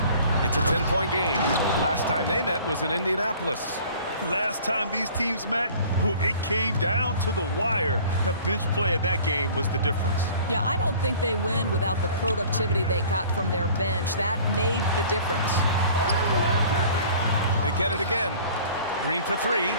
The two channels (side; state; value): both; inverted; correlation -0.48